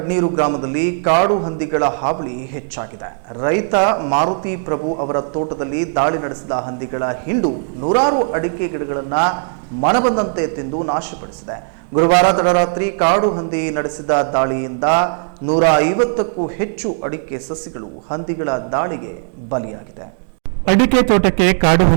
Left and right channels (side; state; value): left; silent; 60 dB below the other